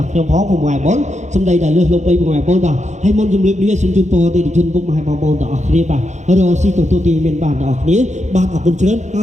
ាក់ខ្ញុំផងពុកម៉ែបងសំដីតែលើសលុបពេកពុកម៉ែបងបាទហើយមុនជំរាបលាសូមជូនពរទៅជនពុកម៉ែបងប្អូនទាំងអស់គ្នាបាទរកស៊ីទទួលទានមានបានទាំងអស់គ្នាបាទអរគុណច្រើនហើ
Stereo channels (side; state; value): left; late; 0.34 ms